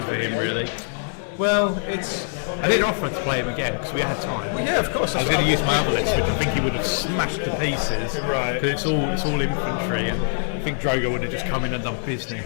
for him, really. Well, I didn't offer to play him again because we had time. Well, yeah, of course. I was going to use my other list, which I think he would have smashed to pieces. Right. Because it's all infantry, and I think Drogo would have just come in and done business.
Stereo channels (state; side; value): silent; right; 63 dB below the other